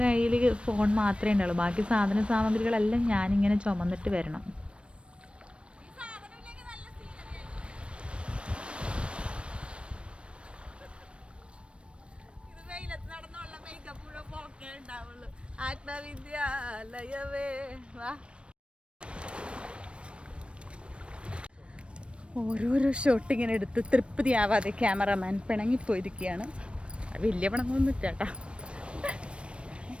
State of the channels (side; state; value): left; late; 0.059 ms